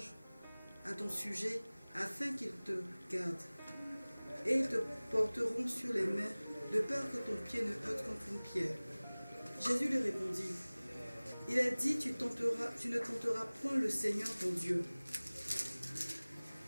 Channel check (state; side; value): inverted; both; correlation -1.00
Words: à ton sujet, afin qu'ils te gardent. Et ils te porteront sur les mains, de peur que ton pied ne heurte contre une pierre. » Jésus lui répondit, « Il est dit, tu ne tenteras point le Seigneur ton Dieu. »